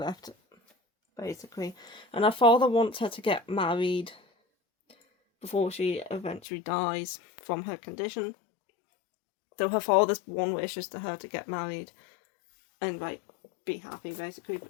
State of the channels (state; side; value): drops out; right; at 6.4 s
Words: basically. And her father wants her to get married before she eventually dies from her condition. So her father's one wish is to her to get married and like be happy, basically.